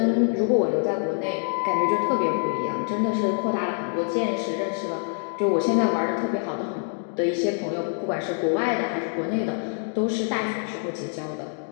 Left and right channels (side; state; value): right; silent; 55 dB below the other